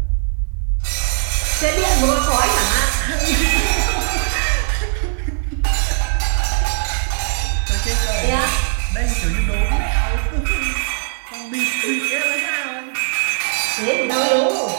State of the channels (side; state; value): left; silent; digital silence